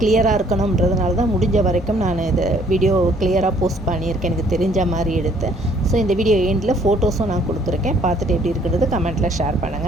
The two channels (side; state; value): both; normal; correlation 0.62